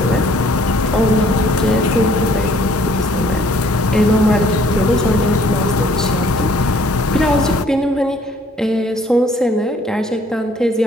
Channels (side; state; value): both; normal; correlation 0.60